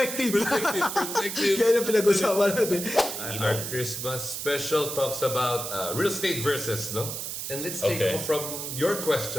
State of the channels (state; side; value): noise; right; hiss, 5 dB below the sound